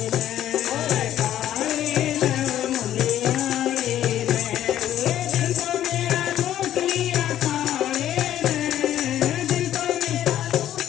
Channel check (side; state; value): right; quieter; 11.8 dB